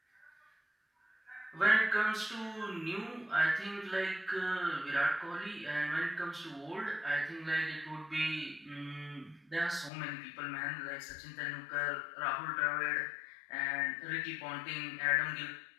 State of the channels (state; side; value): drops out; right; at 9.9 s